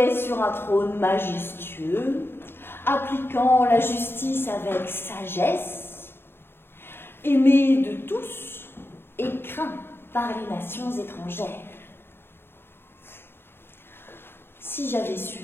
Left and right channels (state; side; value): late; right; 0.11 ms